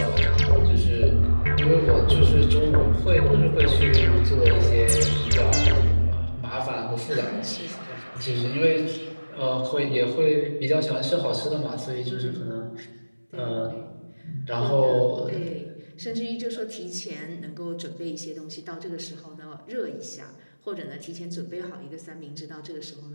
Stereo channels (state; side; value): inverted; both; correlation -1.00